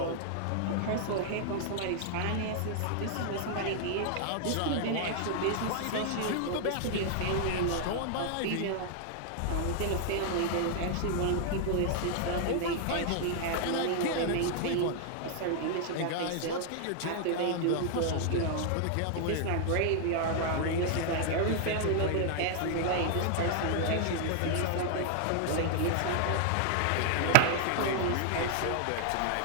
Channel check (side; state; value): both; different; correlation 0.00